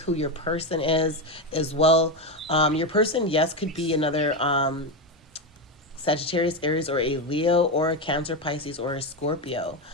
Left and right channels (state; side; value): normal; both; correlation 0.12